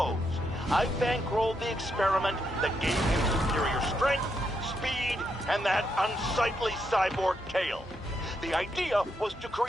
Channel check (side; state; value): both; normal; correlation 0.80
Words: I bankrolled the experiment that gave him superior strength, speed, and that unsightly cyborg tail. The idea was to